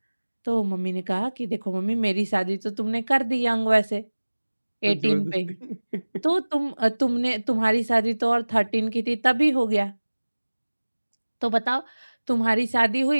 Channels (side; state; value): both; inverted; correlation -1.00